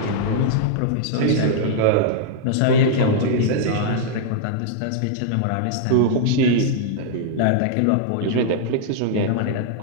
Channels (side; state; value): both; different; correlation -0.01